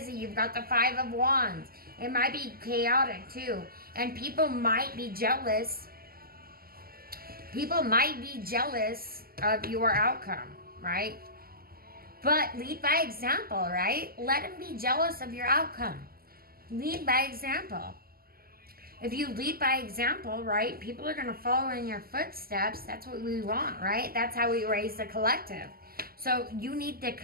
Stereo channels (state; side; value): late; left; 0.43 ms